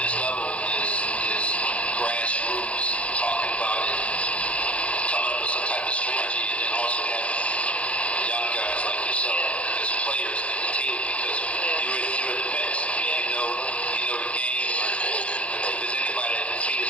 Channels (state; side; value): late; right; 0.062 ms